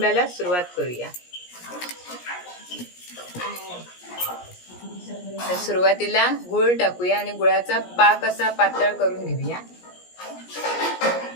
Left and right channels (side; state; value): right; late; 17 ms